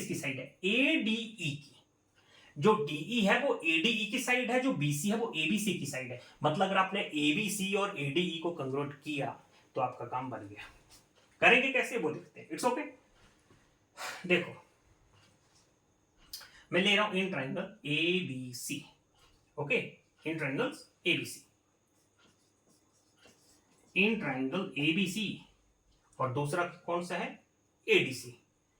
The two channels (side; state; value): both; identical; correlation 1.00